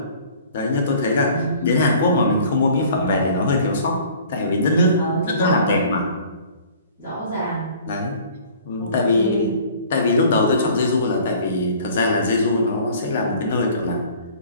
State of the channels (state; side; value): inverted; both; correlation -0.50